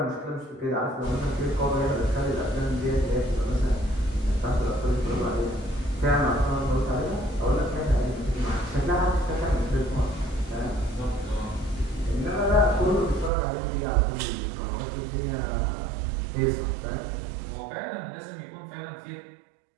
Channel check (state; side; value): drops out; left; at 13.3 s